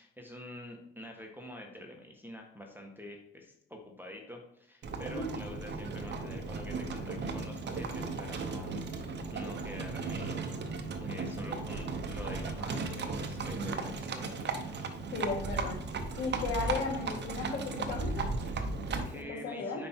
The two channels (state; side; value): normal; both; correlation 0.34